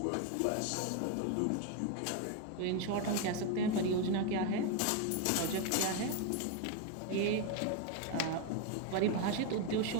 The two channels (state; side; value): different; both; correlation 0.01